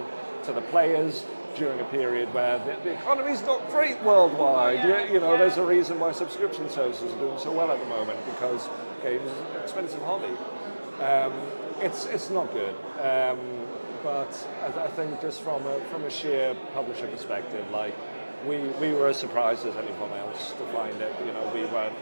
to the players during a period where the economy's not great worldwide. You know, there's a reason why subscription services are doing so well at the moment, because games is an expensive hobby. It's not good. But I think just from a sheer publisher perspective, like, we were as surprised as anyone else to find it. You know, we weren't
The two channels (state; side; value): inverted; both; correlation -1.00